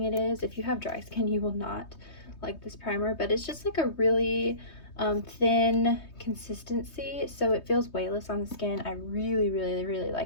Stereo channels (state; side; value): late; right; 3.2 ms